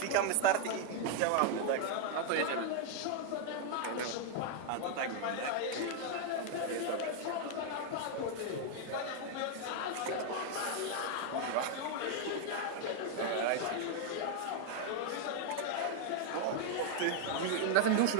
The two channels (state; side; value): different; both; correlation 0.00